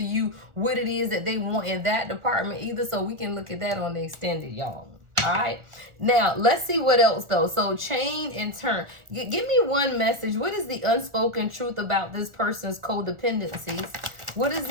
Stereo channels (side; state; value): left; late; 1.4 ms